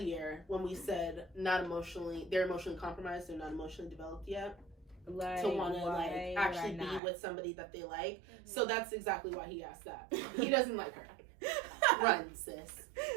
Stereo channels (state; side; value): drops out; left; at 7.0 s